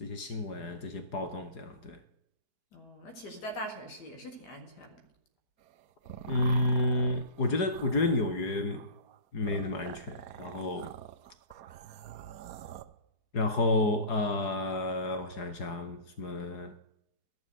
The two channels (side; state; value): right; late; 4.8 ms